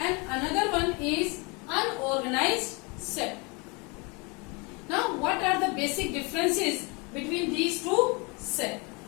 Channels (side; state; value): right; quieter; 29.6 dB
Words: another one is unorganized sector. Now, what are the basic differences between these two sectors?